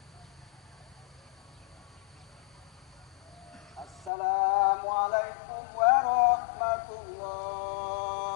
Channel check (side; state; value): right; drops out; at 4.1 s